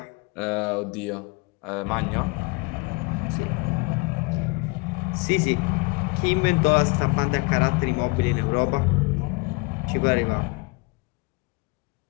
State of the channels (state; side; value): quieter; right; 28.3 dB